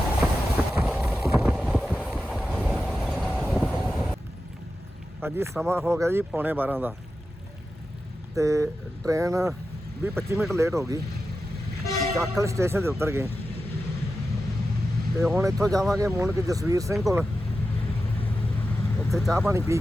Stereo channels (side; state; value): both; normal; correlation 0.91